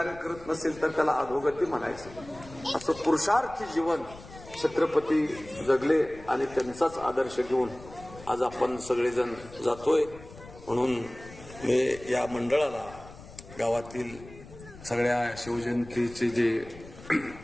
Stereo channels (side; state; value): left; noise; rumble, 18 dB below the sound